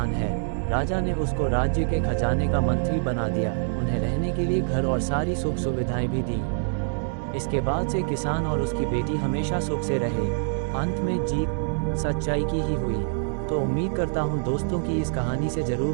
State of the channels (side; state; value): left; silent; 61 dB below the other